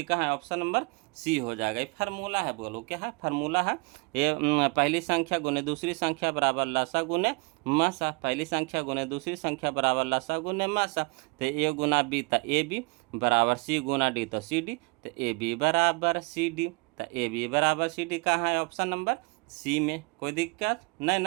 कहाँ है, ऑप्शन नंबर सी हो जाएगा। ये फार्मूला है, बोलो क्या है, फार्मूला है। ये पहली संख्या गुने दूसरी संख्या बराबर लासा गुने मासा, पहली संख्या गुने दूसरी संख्या बराबर लासा गुने मासा। तो ए गुना बी, तो ए बी बराबर सी गुना डी, तो सी डी। तो ए बी बराबर सी डी, तो ए बी बराबर सी डी कहाँ है, ऑप्शन नंबर सी में। कोई दिक्कत नहीं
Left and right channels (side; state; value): left; quieter; 30.2 dB